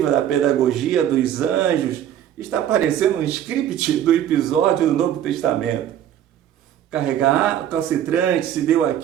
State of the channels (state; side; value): quieter; left; 10.7 dB